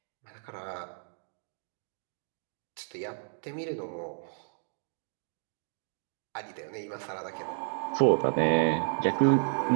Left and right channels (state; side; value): silent; left; digital silence